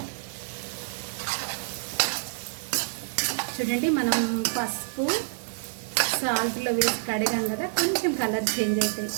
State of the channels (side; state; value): left; silent; digital silence